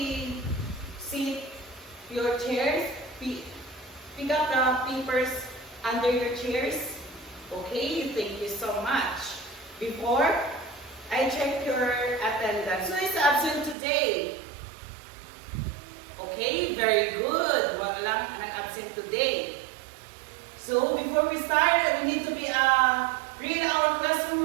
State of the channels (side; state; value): left; drops out; at 13.8 s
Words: sit your chairs, pick up the papers under your chairs. Okay, thank you so much. Before I check your attendance. Who is absent today? Okay, very good. Wala lang nag-absent today. So before we start, we need to read our